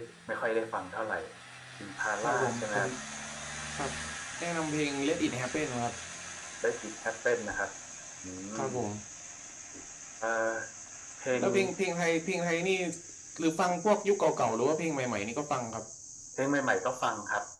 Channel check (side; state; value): both; identical; correlation 1.00